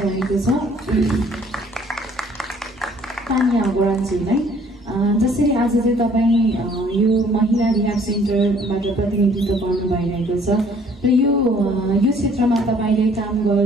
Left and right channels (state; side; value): normal; both; correlation 0.58